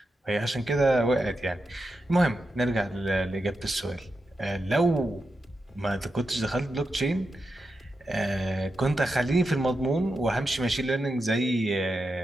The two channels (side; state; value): both; normal; correlation 0.88